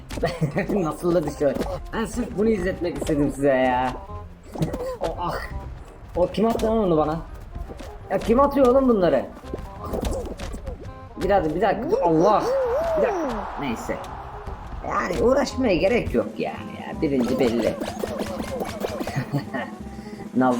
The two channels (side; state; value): both; identical; correlation 1.00